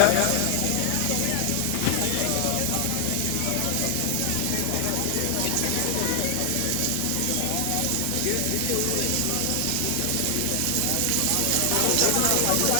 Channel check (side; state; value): both; different; correlation 0.00